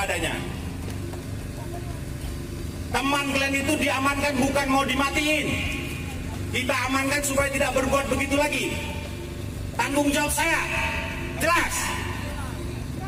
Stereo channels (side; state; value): both; identical; correlation 1.00